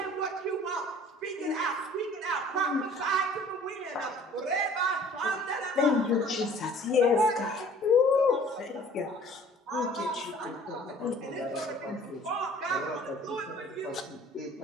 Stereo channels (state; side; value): normal; both; correlation 0.51